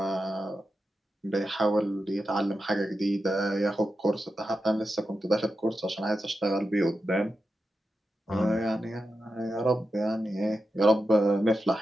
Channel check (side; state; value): both; normal; correlation 0.89